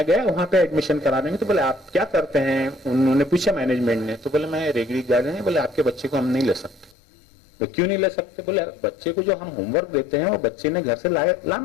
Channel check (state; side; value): drops out; right; at 7.0 s